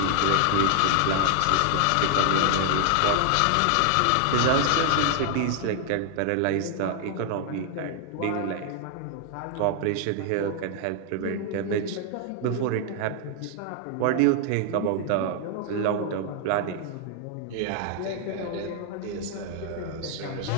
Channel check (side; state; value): both; different; correlation 0.00